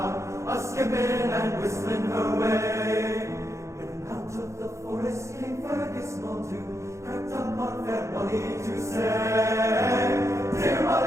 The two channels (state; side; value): late; left; 0.14 ms